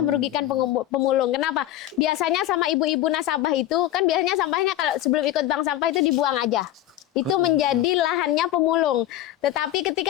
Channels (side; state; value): right; quieter; 13.4 dB